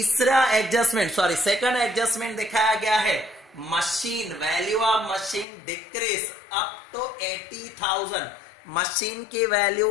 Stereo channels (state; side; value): drops out; right; at 5.5 s